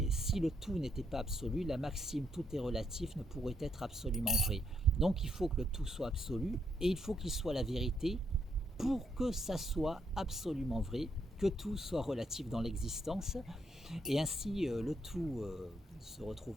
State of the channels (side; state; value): both; normal; correlation 0.76